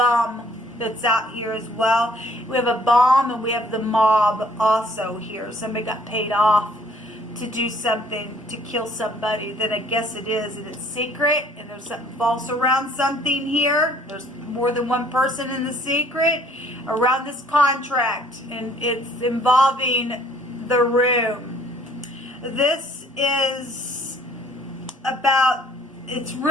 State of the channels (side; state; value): both; normal; correlation 0.59